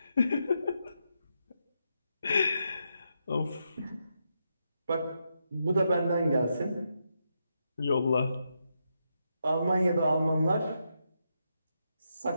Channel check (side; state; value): both; inverted; correlation -0.83